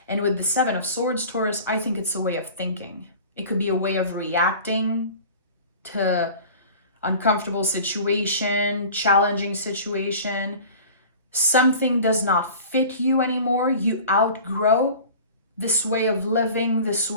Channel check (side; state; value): both; inverted; correlation -0.40